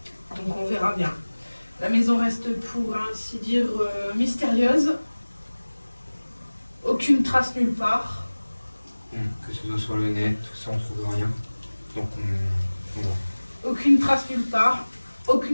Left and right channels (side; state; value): both; inverted; correlation -1.00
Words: Donc on verra bien. La maison reste, pour ainsi dire, mystérieuse. Aucune trace nulle part. Que ce soit sur le net, tout ça, on trouve rien. Donc on va. Aucune trace nulle part.